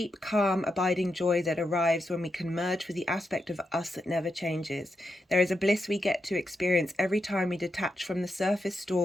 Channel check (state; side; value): normal; both; correlation 0.85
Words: calm, abiding joy that arrives when we can merge with the aspect of us that never changes. There is a bliss we get to experience every time we detach from the surface